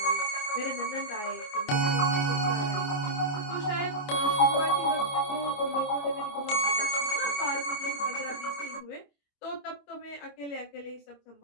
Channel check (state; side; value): late; right; 28 ms